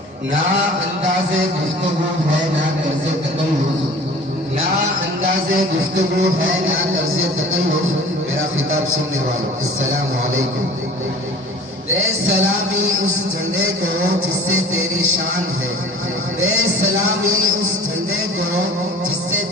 ना अंदाज़े गुफ्तगू है ना तर्ज़े तकल्लुफ़, ना अंदाज़े गुफ्तगू है ना तर्ज़े तकल्लुफ़। मेरा खिताब सुनने वालों, अस्सलामु अलैकुम। दे सलामी उस झंडे को जिससे तेरी शान है, दे सलामी उस झंडे को जिससे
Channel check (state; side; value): normal; both; correlation 0.44